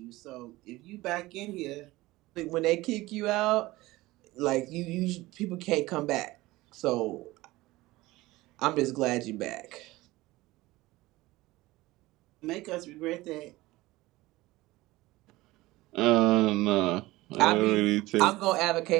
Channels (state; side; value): quieter; left; 19.2 dB